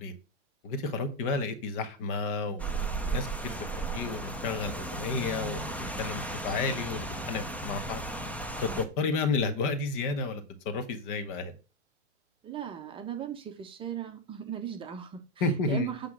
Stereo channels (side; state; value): both; normal; correlation 0.07